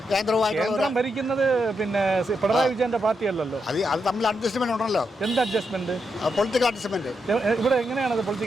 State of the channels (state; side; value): normal; both; correlation 0.83